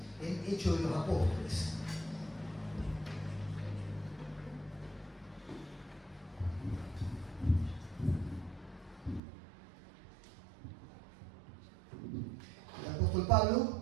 en Hechos de los Apóstoles. El apóstol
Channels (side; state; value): left; drops out; at 9.2 s